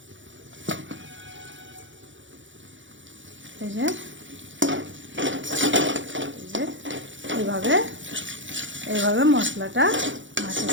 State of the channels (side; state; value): left; late; 0.55 ms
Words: এই যে এইভাবে এইভাবে মশলাটা